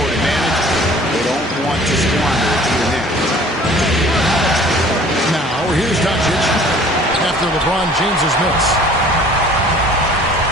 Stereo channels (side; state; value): both; normal; correlation 0.51